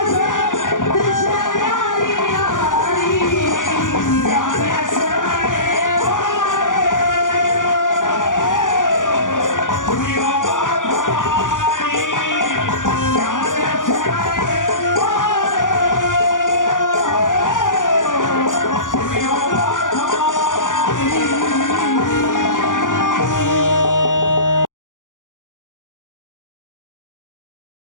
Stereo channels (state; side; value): late; right; 0.88 ms